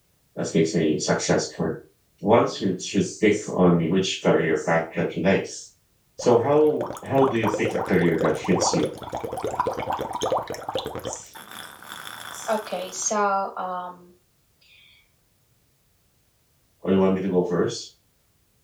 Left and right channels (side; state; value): both; identical; correlation 1.00